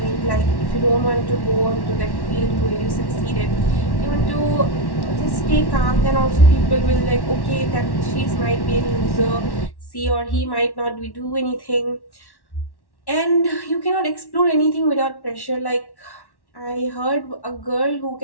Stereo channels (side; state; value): right; late; 1.1 ms